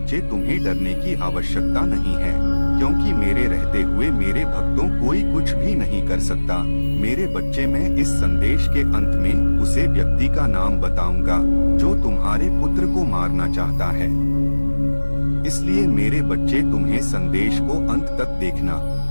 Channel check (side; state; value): both; inverted; correlation -1.00